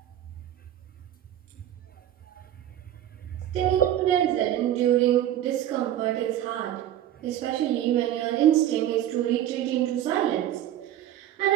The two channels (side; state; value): left; quieter; 11.9 dB